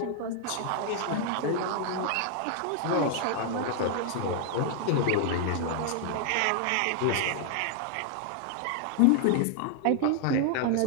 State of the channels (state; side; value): different; both; correlation 0.00